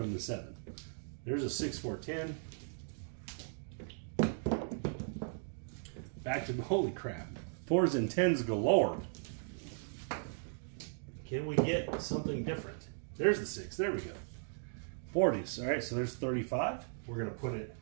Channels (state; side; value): silent; left; digital silence